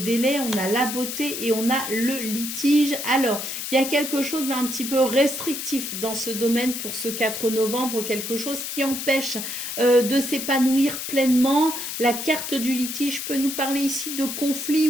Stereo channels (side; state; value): left; noise; hiss, 5 dB below the sound